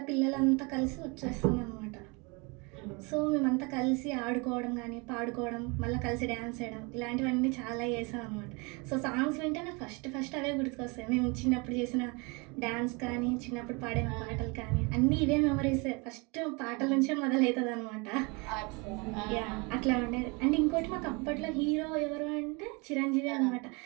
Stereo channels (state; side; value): quieter; left; 29.3 dB